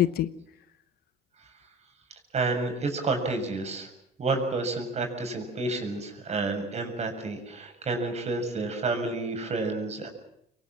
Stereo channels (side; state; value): both; normal; correlation 0.37